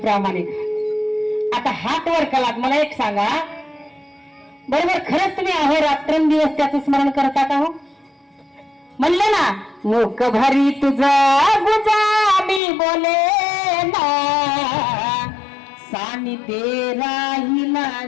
आता हात वर केलात. मला एक सांगा, बरोबर खरंच तुम्ही अहो रात्रंदिवस त्याचं स्मरण करता का? हो म्हणलं ना, मुख भरी तुझा गुजा मी बोले ना, सानिध्ये राहिला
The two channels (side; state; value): right; drops out; at 12.6 s